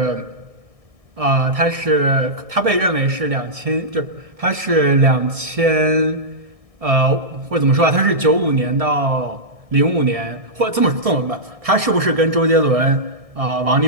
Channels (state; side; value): late; left; 1.6 ms